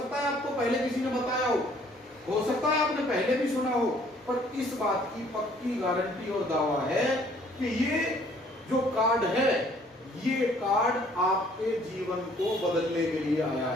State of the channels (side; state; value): both; normal; correlation 0.60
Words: है आपको पहले किसी ने बताया हो सकता है आपने पहले भी सुना हो, पर इस बात की पक्की गारंटी और दावा है कि ये जो कार्ड है, ये कार्ड आपके जीवन को बदलने के लिए आया